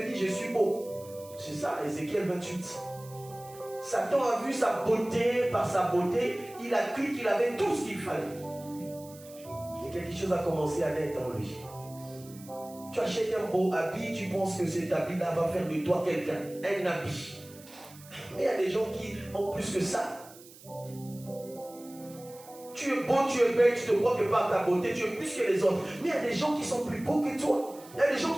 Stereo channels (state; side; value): noise; right; hiss, 21 dB below the sound